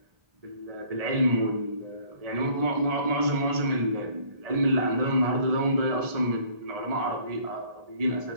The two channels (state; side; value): late; left; 1.7 ms